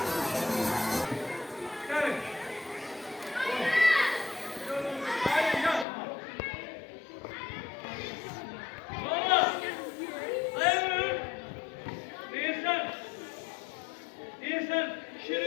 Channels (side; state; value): right; drops out; at 5.9 s